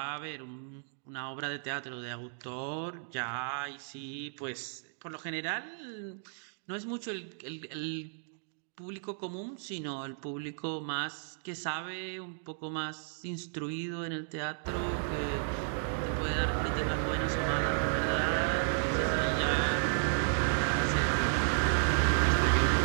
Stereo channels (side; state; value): left; silent; digital silence